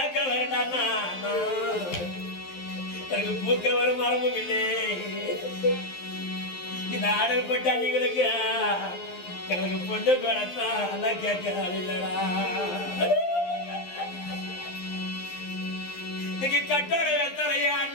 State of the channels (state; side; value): late; right; 11 ms